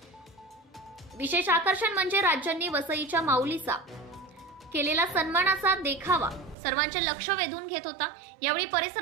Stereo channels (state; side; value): drops out; left; at 6.6 s